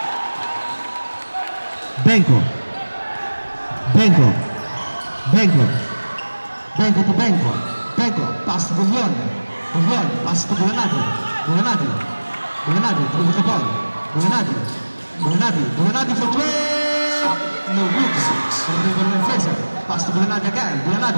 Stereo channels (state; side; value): inverted; both; correlation -1.00